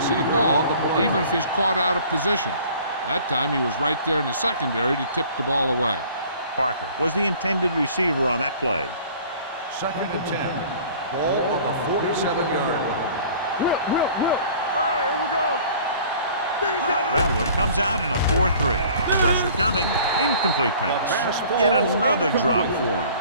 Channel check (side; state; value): both; inverted; correlation -0.49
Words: to the ball even if he's caught out of position. That time he was right there in the secondary to tip the ball away. Parker was the intended receiver on that play. 2nd and 10. Ball on the 47-yard line. Whip. All right, here we go. Redwood comes out in a 4-3. Pressure coming. Incomplete pass. Yet another drop for him.